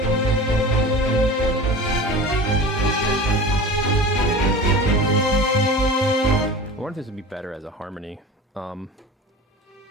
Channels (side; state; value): both; normal; correlation 0.35